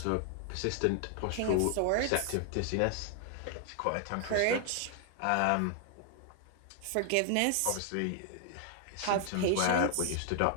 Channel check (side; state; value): both; different; correlation 0.00